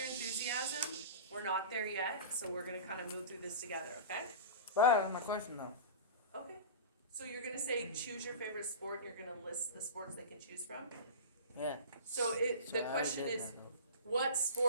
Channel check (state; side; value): inverted; both; correlation -0.32